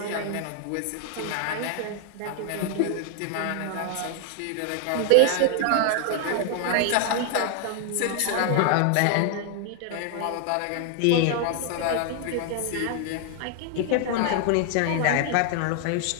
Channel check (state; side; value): different; both; correlation 0.00